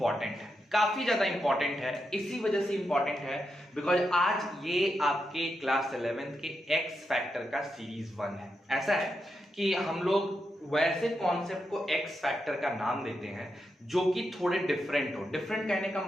है, काफी ज्यादा इंपॉर्टेंट है। इसी वजह से इंपॉर्टेंट है बिकॉज आज ये आपके क्लास 11th के एक्स फैक्टर का सीरीज 1 है। ऐसा है कि हम लोग वैसे कॉन्सेप्ट को एक्स फैक्टर का नाम देते हैं जो कि थोड़े डिफरेंट हो। डिफरेंट कहने का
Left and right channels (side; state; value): both; normal; correlation 0.85